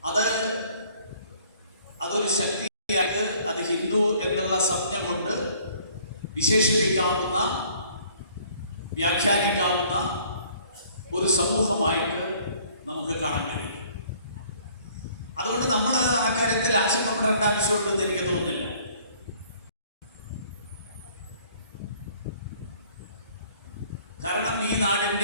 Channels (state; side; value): inverted; both; correlation -0.57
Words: അതൊരു ശക്തിയായിട്ട് അത് ഹിന്ദു എന്നുള്ള സംജ്ഞ കൊണ്ട് വിശേഷിപ്പിക്കാവുന്ന, വ്യാഖ്യാനിക്കാവുന്ന ഒരു സമൂഹമായിട്ട് നമുക്ക് കാണാൻ കഴിയും. അതുകൊണ്ട് നമ്മൾ ആ കാര്യത്തിൽ ആശങ്കപ്പെടേണ്ട ആവശ്യമുണ്ടെന്ന് എനിക്ക് തോന്നുന്നില്ല. കാരണം ഈ